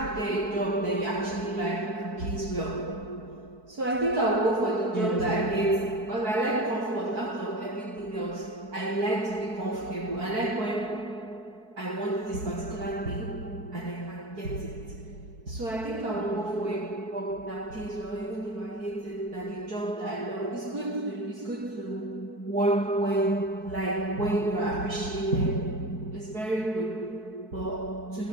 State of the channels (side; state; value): left; late; 4.6 ms